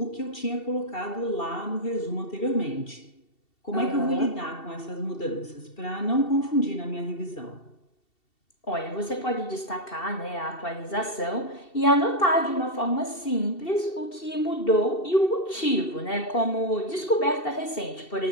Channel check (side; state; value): right; late; 2.7 ms